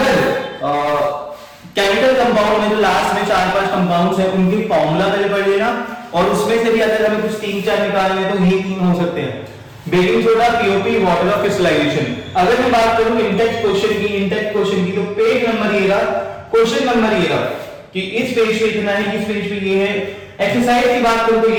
केमिकल कंपाउंड में जो लास्ट में 4-5 कंपाउंड्स हैं उनकी फॉर्मूला पहले पढ़ लेना और उसमें से भी अगर हमें कुछ 3-4 निकालने हैं तो ये 3 हो सकते हैं, baking soda, POP, water of crystallisation. अगर मैं बात करूं इंटेक्स क्वेश्चन की तो पेज नंबर ये रहा, क्वेश्चन नंबर ये रहा कि इस पेज पे इतना है, इस पेज पे ये है। एक्सरसाइज की बात करूं तो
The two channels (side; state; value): both; identical; correlation 1.00